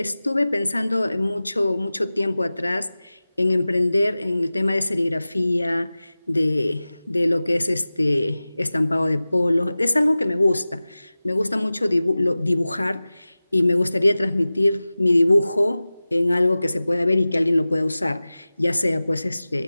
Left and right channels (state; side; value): inverted; both; correlation -0.97